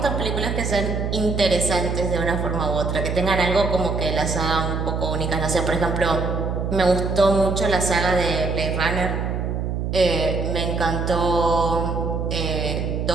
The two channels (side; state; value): right; noise; hum, 2 dB below the sound